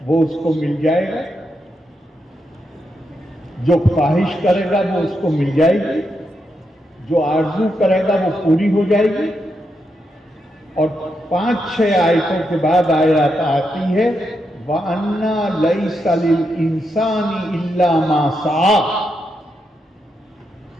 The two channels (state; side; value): normal; both; correlation 0.83